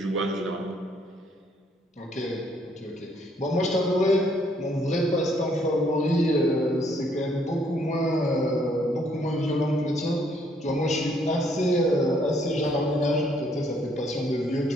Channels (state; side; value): normal; both; correlation 0.67